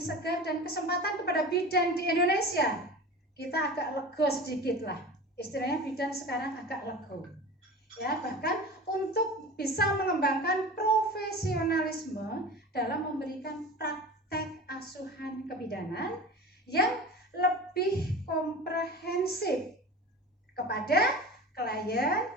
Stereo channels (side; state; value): both; normal; correlation 0.34